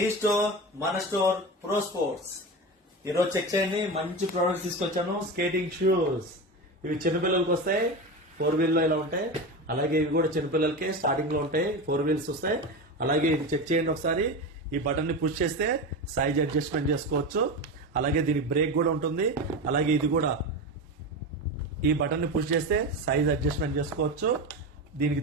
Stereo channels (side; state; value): both; normal; correlation 0.22